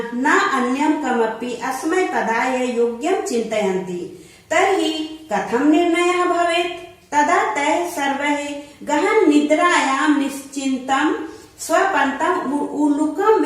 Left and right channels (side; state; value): both; identical; correlation 1.00